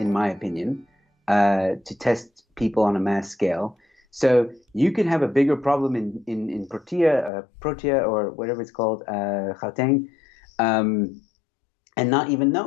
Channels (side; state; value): right; drops out; at 7.3 s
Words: my opinion, to test people on a mass scale. So you could have a bigger problem in Protea or whatever it's called, Gauteng, and not even